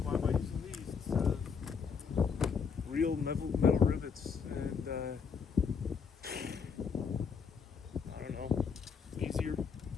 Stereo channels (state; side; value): quieter; right; 6.1 dB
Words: am I using these? It's real metal rivets, and I don't know, easier.